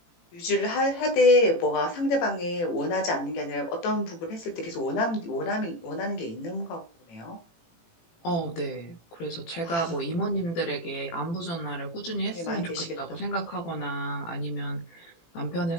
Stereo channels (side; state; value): right; late; 18 ms